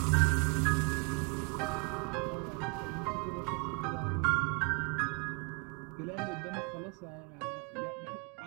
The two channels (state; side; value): quieter; left; 32.8 dB